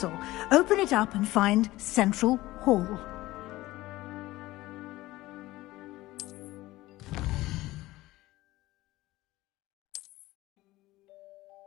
Open it up and find Central Hall.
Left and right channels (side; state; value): right; quieter; 17.8 dB